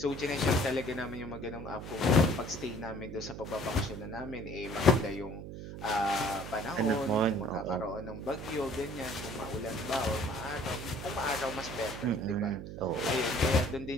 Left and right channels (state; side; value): noise; right; hum, 9 dB below the sound